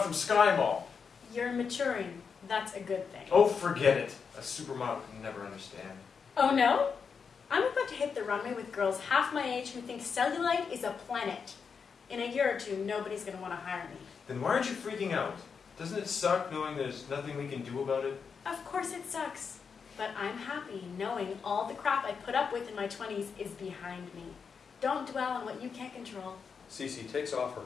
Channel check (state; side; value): quieter; right; 6.0 dB